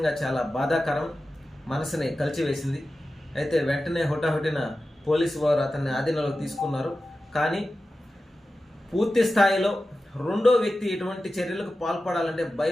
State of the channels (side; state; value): both; normal; correlation 0.93